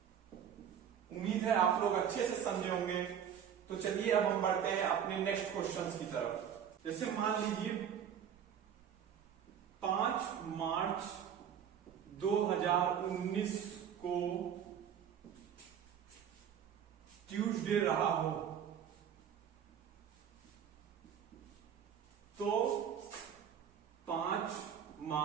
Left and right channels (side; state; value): left; quieter; 8.6 dB